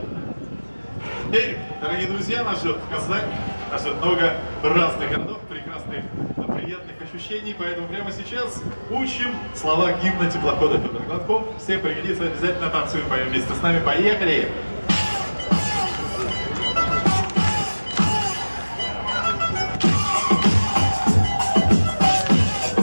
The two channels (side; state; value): both; inverted; correlation -1.00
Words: Пермь. Дорогие друзья, нас ждет Казань, нас ждет много разных городов, прекрасных, приятных ощущений. Поэтому прямо сейчас учим слова гимна теплохода Федор Гладков. Всем пригодится, обязательно танцуем, поем вместе с нами. Поехали!